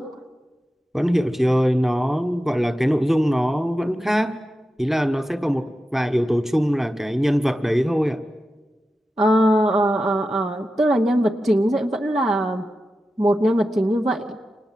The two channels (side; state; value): both; normal; correlation 0.91